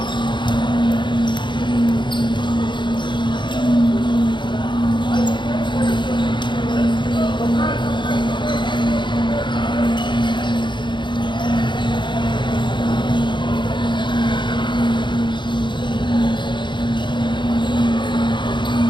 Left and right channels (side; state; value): right; late; 0.23 ms